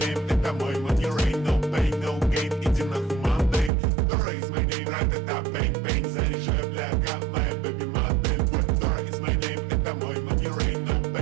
name, это мой money rain. No pain, no gain, иди нахуй Monday. Dora is my name, ра-та-та, bang-bang. Заряжай, бляга, моя baby модель. Dora is my name, это мой money rain. No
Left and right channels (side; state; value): left; drops out; at 3.7 s